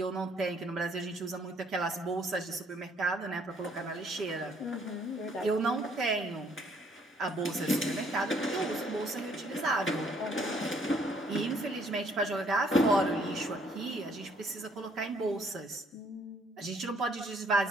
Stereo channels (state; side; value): normal; both; correlation 0.64